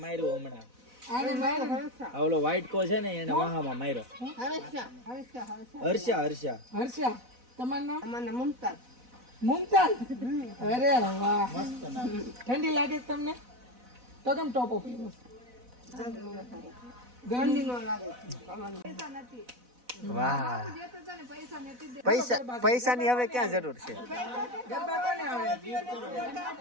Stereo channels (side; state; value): left; late; 4.0 ms